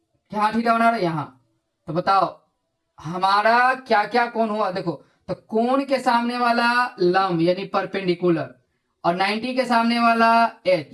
क्या थीटा बना रहा यहां, तो बताओ हमारा क्या क्या कोण हुआ, देखो तो कोण के सामने वाला लंब यानी परपेंडिकुलर, और 90 के सामने वाला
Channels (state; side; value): identical; both; correlation 1.00